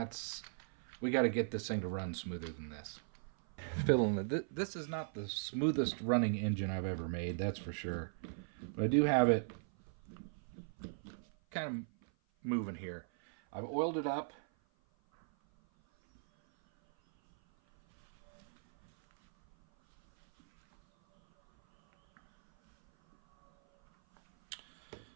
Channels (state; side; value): silent; left; 52 dB below the other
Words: We got to get this thing to run smoother than this. Fiddling it. This is not the smoothest running engine I've ever made, that's for sure. But I do have it kind of moving here. I've oiled it up.